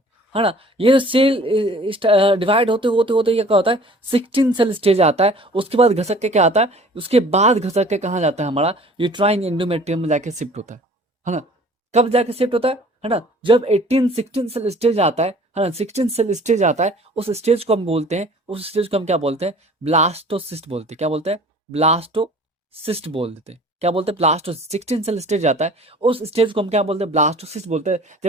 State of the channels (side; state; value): both; normal; correlation 0.49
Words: है ना। ये जो सेल डिवाइड होते होते होते ये क्या होता है, 16 सेल स्टेज आता है। उसके बाद घसक के क्या आता है, उसके बाद घसक के कहाँ जाता है, हमारा यूट्राइन एंडोमेट्रियम में जाके शिफ्ट होता है ना। कब जाके शिफ्ट होता है ना, जब 16 सेल स्टेज आता है ना, 16 सेल स्टेज आता है, उस स्टेज को हम बोलते हैं, उस स्टेज को हम क्या बोलते हैं, ब्लास्टोसिस्ट बोलते हैं। क्या बोलते हैं, ब्लास्टोसिस्ट बोल देते हैं। क्या बोलते हैं, ब्लास्टोसिस्ट। 16 सेल स्टेज आता है, उस स्टेज को हम क्या बोलते हैं, ब्लास्टोसिस्ट बोलते हैं।